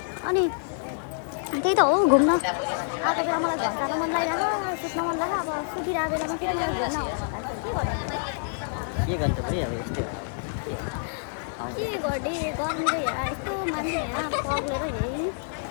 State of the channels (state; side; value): silent; right; digital silence